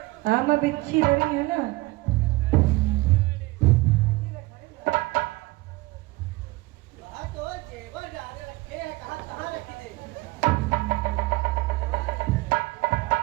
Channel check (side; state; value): left; quieter; 21.1 dB